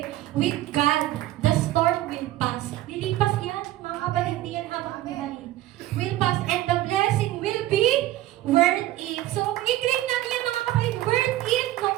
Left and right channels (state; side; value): quieter; left; 15.2 dB